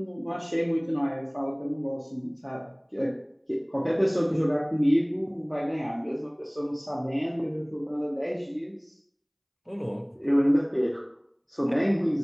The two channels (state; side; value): identical; both; correlation 1.00